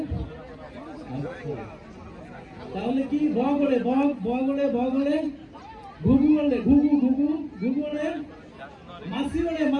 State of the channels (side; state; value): both; identical; correlation 1.00